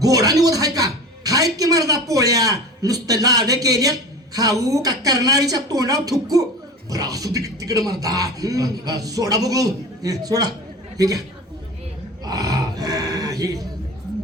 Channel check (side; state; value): both; normal; correlation 0.33